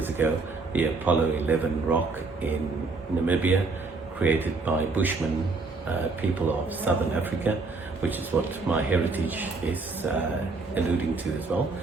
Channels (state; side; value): quieter; left; 3.9 dB